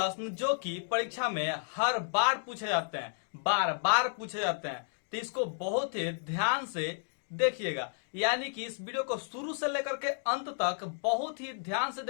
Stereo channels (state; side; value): silent; right; digital silence